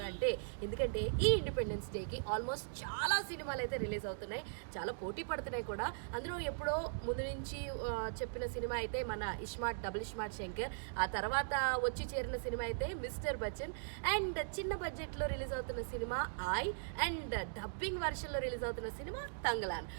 అంటే ఎందుకంటే ఈ ఇండిపెండెన్స్ డేకి ఆల్మోస్ట్ చాలా సినిమాలు అయితే రిలీజ్ అవుతున్నాయి, చాలా పోటీ పడుతున్నాయి కూడా. అందులో ఎప్పుడో ముందు నుంచి చెప్పిన సినిమా అయితే మన ఇస్మార్ట్ డబుల్ ఇస్మార్ట్ శంకర్, ఆ తర్వాత వచ్చి చేరిన సినిమా అయితే మిస్టర్ బచ్చన్, అండ్ చిన్న బడ్జెట్లో రిలీజ్ అవుతున్న సినిమా ఐ, అండ్ డబ్బింగ్ వర్షన్లో రిలీజ్ అవుతున్న సినిమా తంగలాన్.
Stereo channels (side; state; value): left; silent; digital silence